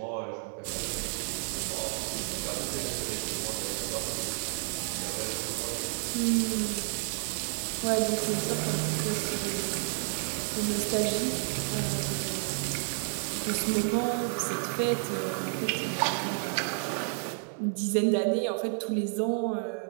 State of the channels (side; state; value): left; silent; 57 dB below the other